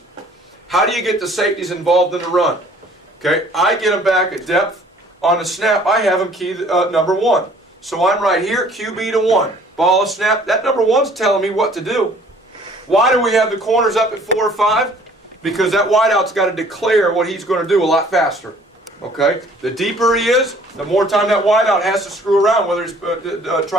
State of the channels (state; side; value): normal; both; correlation 0.55